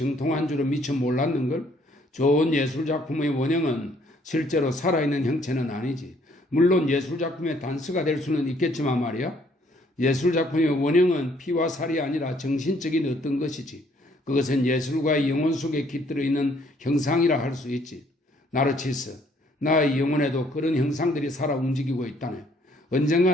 줄은 미처 몰랐는걸? 좋은 예술작품의 원형은 실제로 살아있는 형체는 아니지. 물론 예술작품의 단서가 될 수는 있겠지만 말이야. 예술작품의 원형은 피와 살이 아니라 정신적인 어떤 것이지. 그것은 예술가의 영혼 속에 깃들어 있는 형상이라 할 수 있지. 나르치스, 나의 영혼에도 그런 형상들이 살아 움직이고 있다네.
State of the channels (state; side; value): normal; both; correlation 0.64